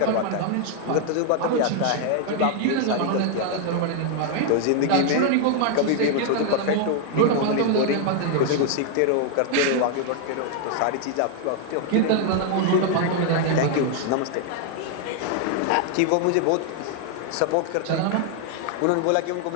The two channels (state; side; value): different; both; correlation 0.00